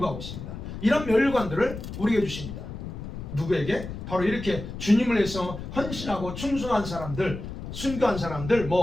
있습니다. 이런 면류관들을 우리에게 주십니다. 누구에게? 바로 이렇게 주님을 위해서 헌신하고 충성한 사람들, 순교한 사람들,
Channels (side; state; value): left; noise; rumble, 9 dB below the sound